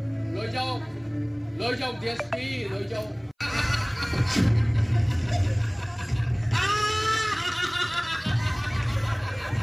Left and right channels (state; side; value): identical; both; correlation 1.00